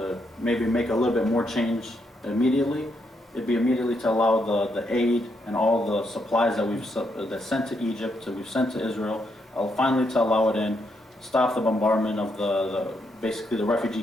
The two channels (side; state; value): both; normal; correlation 0.78